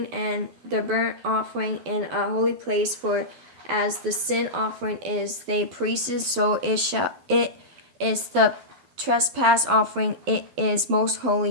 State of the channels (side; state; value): left; late; 12 ms